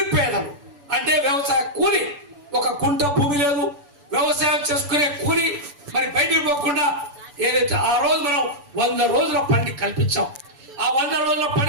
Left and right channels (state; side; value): late; left; 6.9 ms